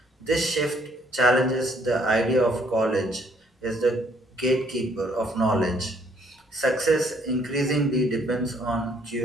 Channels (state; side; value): normal; both; correlation 0.65